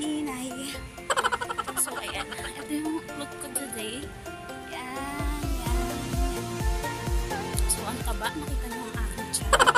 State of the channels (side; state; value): both; identical; correlation 1.00